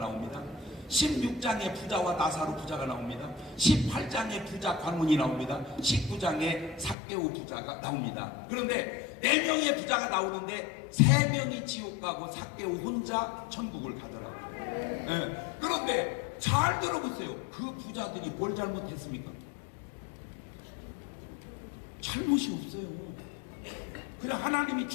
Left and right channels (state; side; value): drops out; right; at 7.0 s